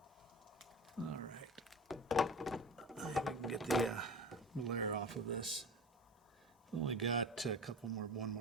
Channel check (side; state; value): both; normal; correlation 0.33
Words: All right. We can get the glare off of this. Only got one